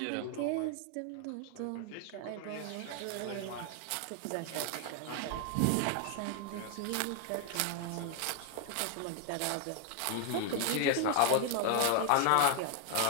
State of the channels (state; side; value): different; both; correlation 0.00